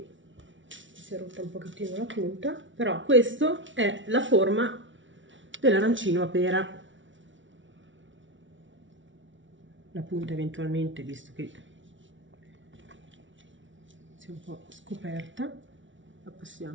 si è rotta un pochettino la punta, però questa è la forma dell'arancino a pera. La punta eventualmente, visto che si è un po' scoperta, la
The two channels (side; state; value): left; late; 0.56 ms